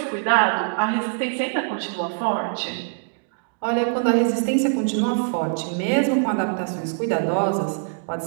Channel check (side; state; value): left; silent; 63 dB below the other